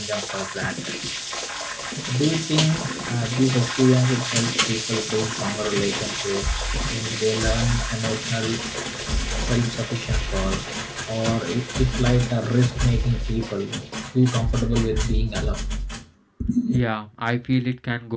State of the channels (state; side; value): identical; both; correlation 1.00